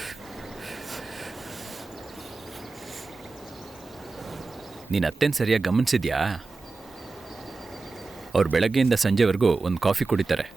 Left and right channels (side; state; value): left; quieter; 3.8 dB